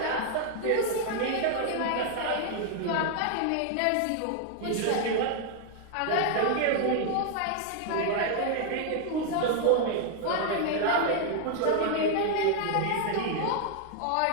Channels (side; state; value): both; different; correlation 0.00